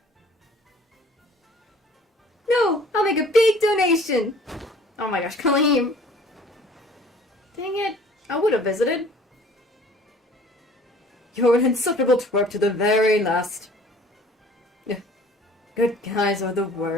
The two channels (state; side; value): normal; both; correlation 0.52